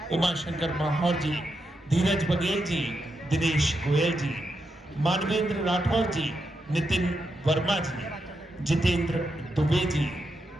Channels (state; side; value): normal; both; correlation 0.85